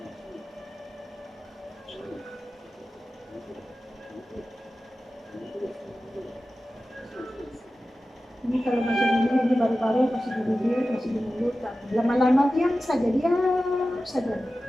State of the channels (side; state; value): both; normal; correlation 0.95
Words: Ini kalau macam ini baru-baru masih di bibir, masih di mulut, lama-lama diam saja.